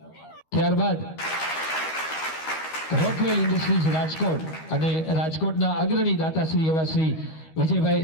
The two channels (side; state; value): right; late; 13 ms